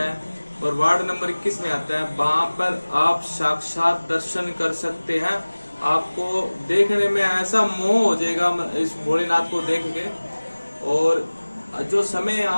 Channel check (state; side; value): inverted; both; correlation -1.00